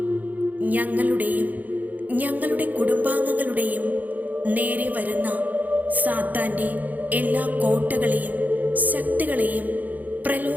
ഞങ്ങളുടെയും ഞങ്ങളുടെ കുടുംബാംഗങ്ങളുടെയും നേരെ വരുന്ന സാത്താൻ്റെ എല്ലാ കോട്ടകളെയും ശക്തികളെയും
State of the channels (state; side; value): late; left; 0.081 ms